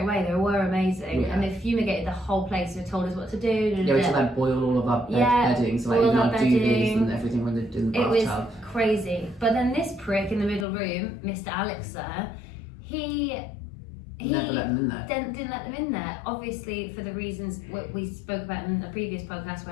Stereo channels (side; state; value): right; drops out; at 10.7 s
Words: away. They were amazing. Yeah. And they fumigated the whole place. They told us what to do. Yeah, we had to boil all of our bedding, so boil even our our duvets bedding. and everything when they're in the It was bathtub. crazy. But then this prick in the middle room, Mr. Alex sir, he Never let them in there. didn't let them in there, obviously for the reasons we spoke about in a previous podcast